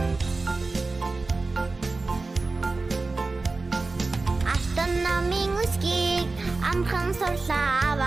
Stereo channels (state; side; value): quieter; left; 3.6 dB